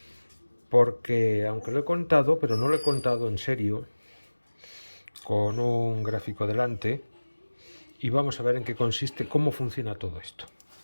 porque aunque lo he contado, pero no lo he contado en serio, con un gráfico delante, y vamos a ver en qué consiste, cómo funciona todo esto.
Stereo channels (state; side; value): inverted; both; correlation -1.00